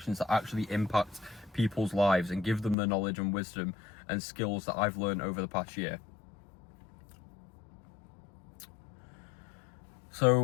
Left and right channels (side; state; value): right; drops out; at 2.8 s